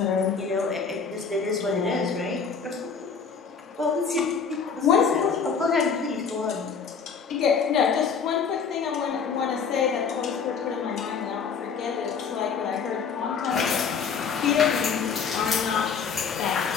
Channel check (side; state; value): right; quieter; 6.0 dB